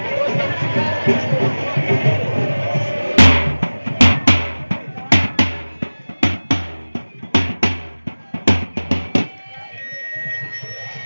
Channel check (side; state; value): both; inverted; correlation -1.00